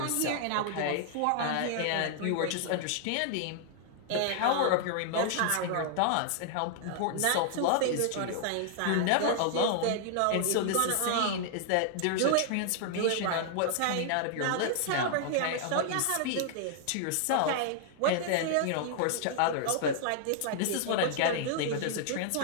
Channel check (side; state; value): both; different; correlation 0.00